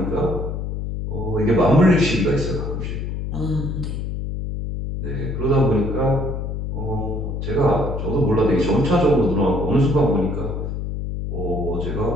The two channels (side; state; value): left; noise; hum, 4 dB below the sound